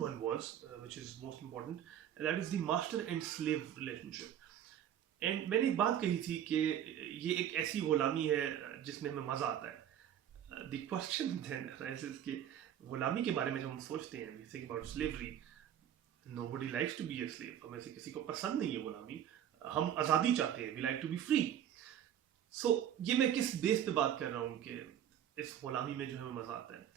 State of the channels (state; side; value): quieter; left; 10.1 dB